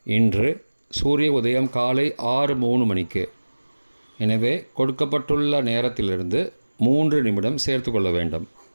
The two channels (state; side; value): inverted; both; correlation -1.00